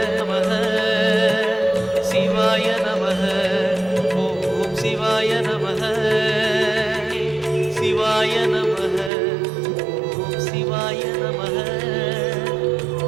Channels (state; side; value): drops out; left; at 9.1 s